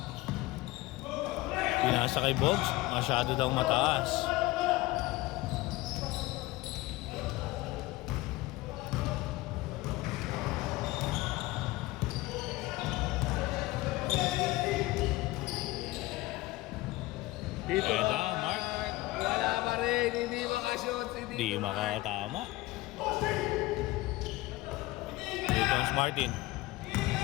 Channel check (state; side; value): quieter; right; 19.4 dB